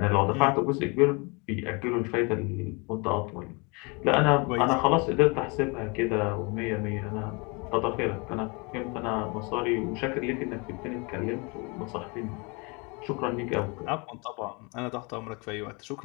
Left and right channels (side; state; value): right; quieter; 30.1 dB